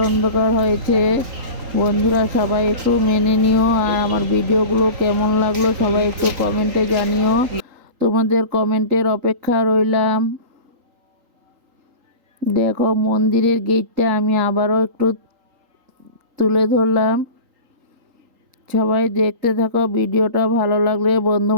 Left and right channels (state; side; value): late; left; 3.8 ms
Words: অন্ধকার হয়েছে। বন্ধুরা সবাই একটু মেনে নিও, আর আমার ভিডিওগুলো কেমন লাগলো সবাই একটু কমেন্টে জানিও। তোমাদের কমেন্টের অপেক্ষা রইলাম। দেখো মন্দিরের গেটটা আমি আবারও একটু তুলে ধরলাম। সবাই দেখতে থাকো ভিডিওটা, ভালো লাগলে বন্ধু